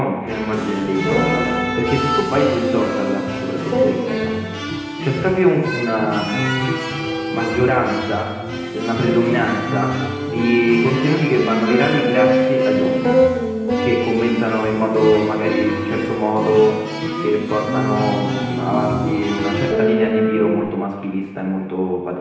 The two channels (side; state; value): both; identical; correlation 1.00